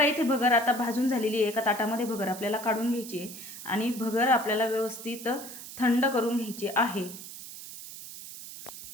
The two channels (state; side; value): noise; right; hiss, 12 dB below the sound